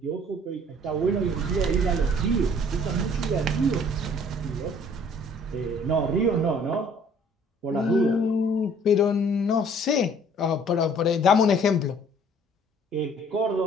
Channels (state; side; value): normal; both; correlation 0.56